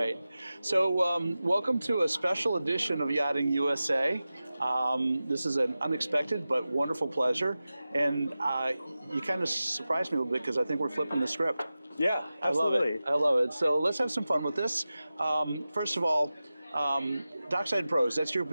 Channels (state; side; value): inverted; both; correlation -0.95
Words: So welcome to a special edition of Yachting USA. This is an unexpected but wonderful pleasure, and you kind of surprised me a little bit because I think we're flipping the script. Yeah, absolutely. I love it. So let's have some fun with this. First of all, Dockside Pros, that's your